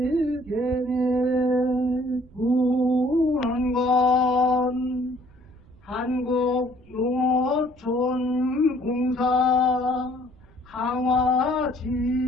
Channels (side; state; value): right; noise; rumble, 26 dB below the sound